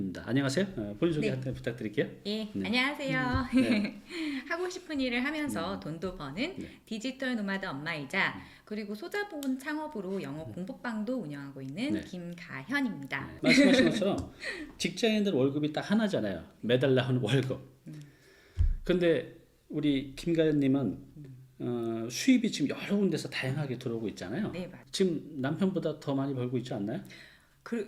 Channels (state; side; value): identical; both; correlation 1.00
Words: 안녕하세요. 본인 소개 네. 한번 부탁드릴게요. 예, 네. 안녕하세요. 네. 하고 싶은 일을 하면서 돈도 버는 네. 디지털 노마드 엄마이자 그리고 소자본 창업으로 영어 공부방도 운영하고 있는 네. 김가현입니다. 말씀하신 것처럼 직장인들 월급이 딱 하나잖아요. 매달 나오는 월급. 근데 우리 김가현님은 수입이 지금 여러 군데서 다양하게 들어오고 있잖아요. 네, 맞아요. 지금 남편보다 더 많이 벌고 있지 않나요?